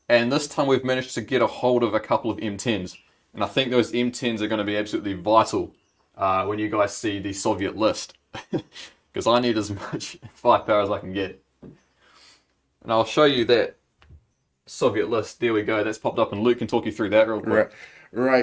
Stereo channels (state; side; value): identical; both; correlation 1.00